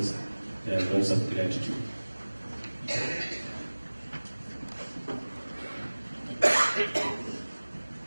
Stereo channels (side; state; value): both; inverted; correlation -1.00